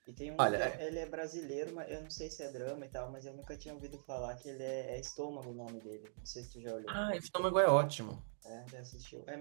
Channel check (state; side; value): silent; left; digital silence